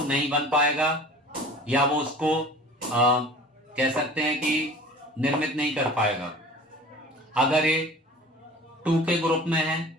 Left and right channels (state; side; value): normal; both; correlation 0.43